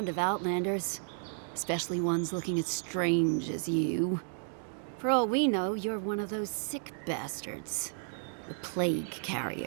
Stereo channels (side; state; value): left; silent; digital silence